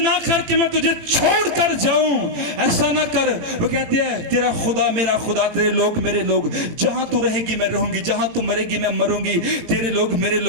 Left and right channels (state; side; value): late; left; 18 ms